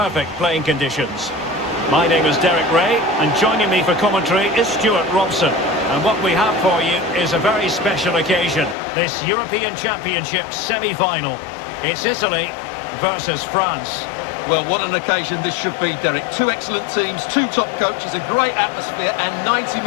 playing conditions. My name is Derek Ray, and joining me for commentary is Stuart Robson. And what we have for you is a very special occasion, this European Championship semi-final. It's Italy versus France. Well, what an occasion this should be, Derek. Two excellent teams, two top coaches, a great atmosphere, and 90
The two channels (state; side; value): drops out; right; at 8.8 s